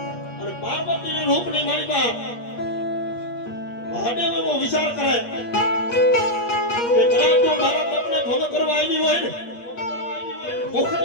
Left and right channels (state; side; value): late; right; 8.5 ms